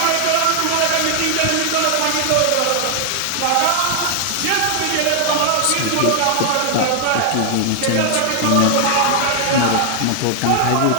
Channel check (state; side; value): different; both; correlation 0.00